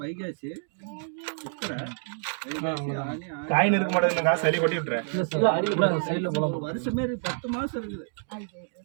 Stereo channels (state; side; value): silent; left; digital silence